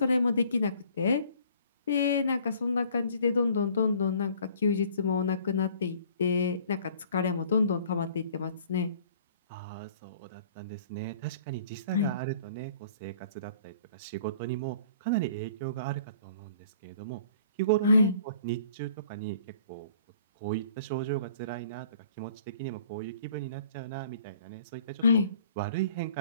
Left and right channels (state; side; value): inverted; both; correlation -0.54